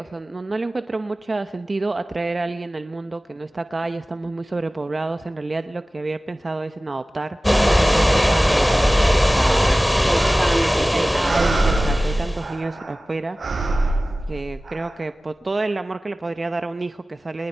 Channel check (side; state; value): both; normal; correlation 0.97